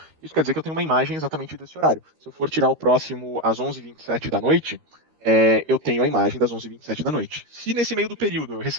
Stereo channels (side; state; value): left; late; 13 ms